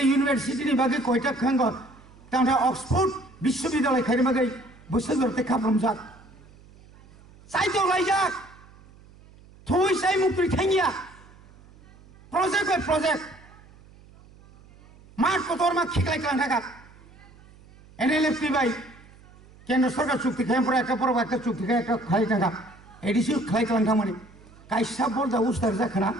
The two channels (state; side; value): noise; right; hum, 24 dB below the sound